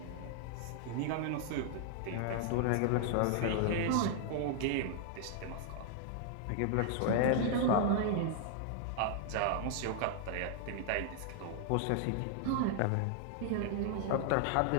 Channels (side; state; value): both; different; correlation -0.01